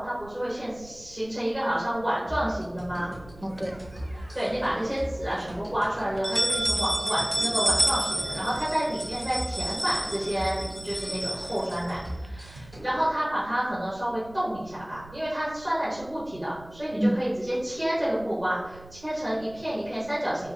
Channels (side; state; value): right; noise; rumble, 20 dB below the sound